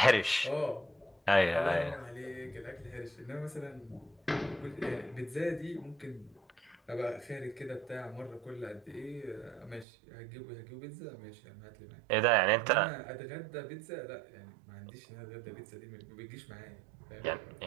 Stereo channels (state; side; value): drops out; left; at 9.9 s